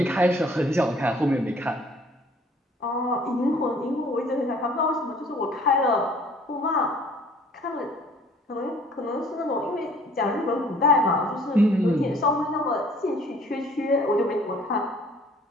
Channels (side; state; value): both; normal; correlation 0.55